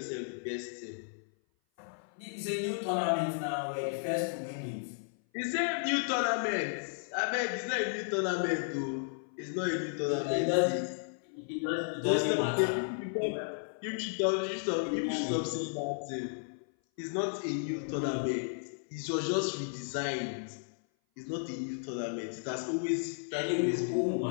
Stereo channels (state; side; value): silent; right; 55 dB below the other